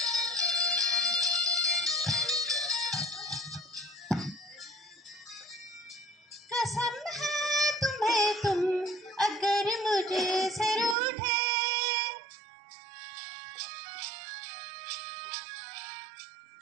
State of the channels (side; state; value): left; drops out; at 11.0 s